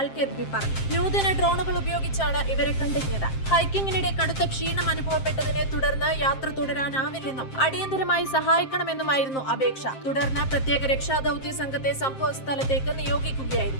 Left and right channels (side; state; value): right; late; 7.6 ms